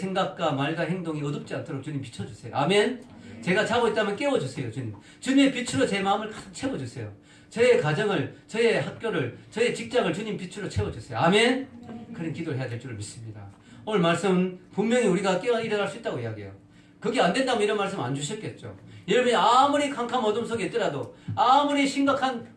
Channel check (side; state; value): both; identical; correlation 1.00